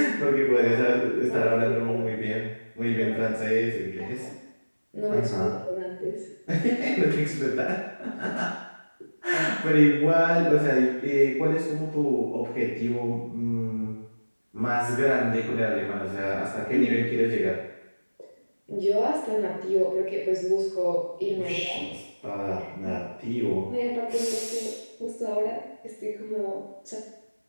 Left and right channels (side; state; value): both; inverted; correlation -1.00